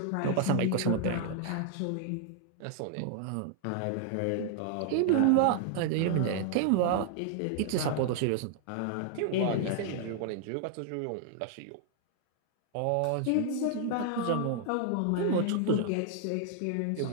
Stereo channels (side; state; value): both; different; correlation 0.00